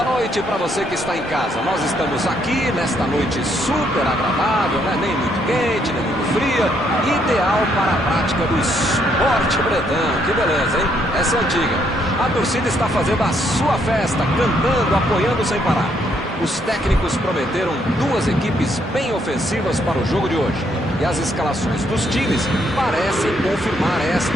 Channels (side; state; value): both; normal; correlation 0.72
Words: Boa noite para você que está em casa. Nós estamos aqui nesta noite super agradável, né? Nem muito quente, nem muito fria. Ideal para a prática do esporte bretão. Que beleza, hein? Essa é antiga. A torcida está fazendo a sua festa, cantando, apoiando sem parar. Os técnicos prometeram duas equipes bem ofensivas para o jogo de hoje. E as escalações dos times parecem confirmar